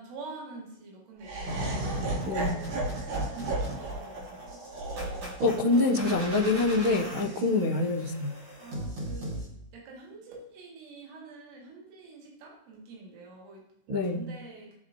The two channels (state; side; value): late; left; 16 ms